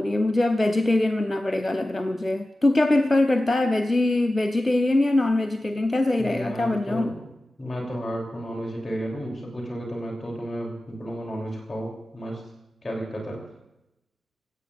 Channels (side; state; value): both; normal; correlation 0.94